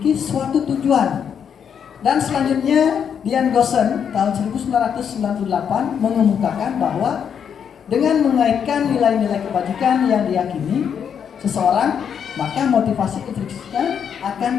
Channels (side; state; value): right; quieter; 7.8 dB